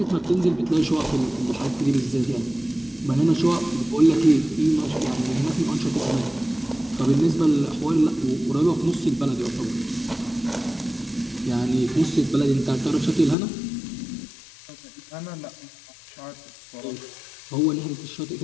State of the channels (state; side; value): drops out; right; at 13.4 s